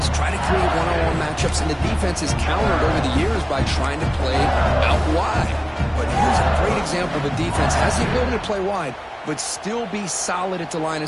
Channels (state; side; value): identical; both; correlation 1.00